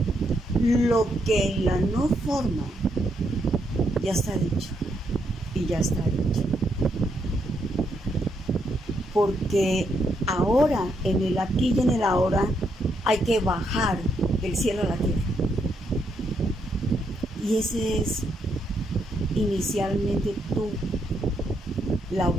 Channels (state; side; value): normal; both; correlation 0.77